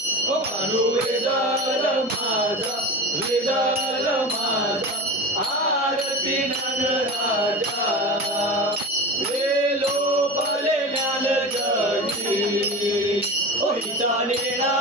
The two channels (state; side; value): normal; both; correlation 0.28